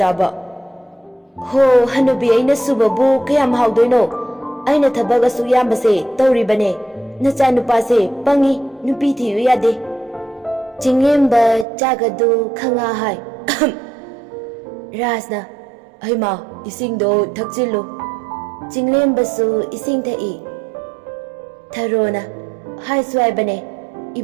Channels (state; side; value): drops out; left; at 11.7 s